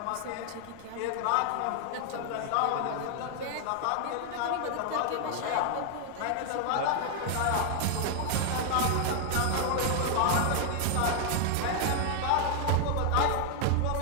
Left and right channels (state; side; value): different; both; correlation 0.00